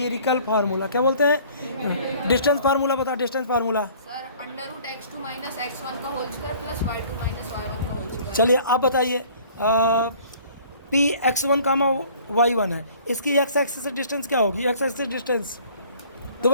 formula. क्या बोलते हैं? डिस्टेंस फार्मूला बता। Distance formula sir under root x2 minus x1 का whole square plus y2 minus y1 का होल स्क्वायर। चलिए आप बताइए पी x1 कामा y1 है इसकी x एक्सिस से डिस्टेंस क्या होगी? x axis distance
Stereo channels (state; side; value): inverted; both; correlation -0.52